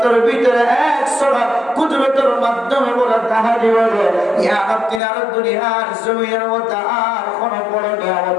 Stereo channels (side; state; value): right; drops out; at 5.0 s